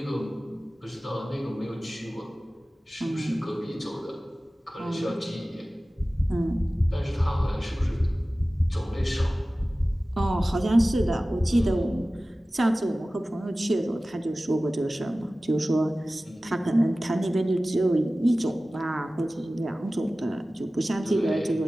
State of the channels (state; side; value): normal; both; correlation 0.97